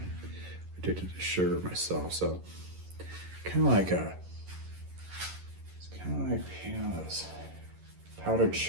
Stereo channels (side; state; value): left; late; 11 ms